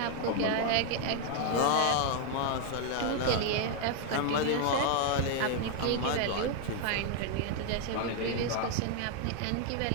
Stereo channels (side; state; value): both; different; correlation 0.00